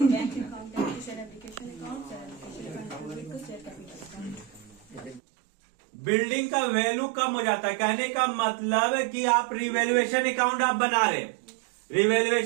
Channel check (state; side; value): drops out; left; at 5.2 s